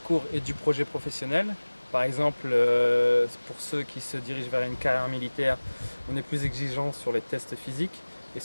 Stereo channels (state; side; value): inverted; both; correlation -1.00